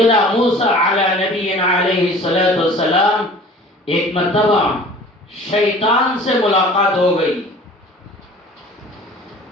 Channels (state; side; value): normal; both; correlation 0.46